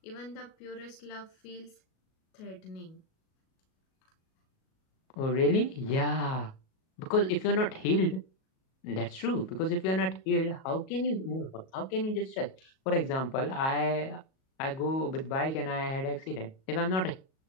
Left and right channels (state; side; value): late; right; 37 ms